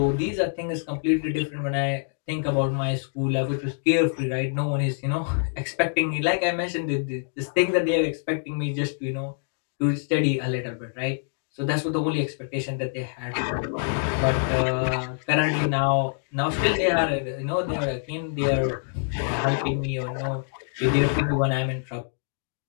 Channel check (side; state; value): right; silent; digital silence